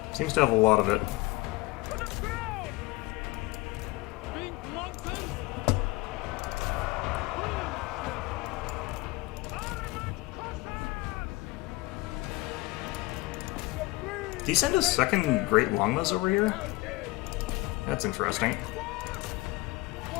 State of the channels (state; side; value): quieter; right; 21.6 dB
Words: Seems to have a lot of it. To the ground! Pink mountain! Did he send his second Great Longbows over here? That's interesting.